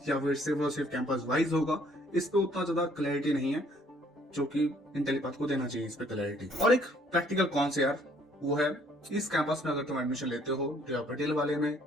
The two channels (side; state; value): both; normal; correlation 0.62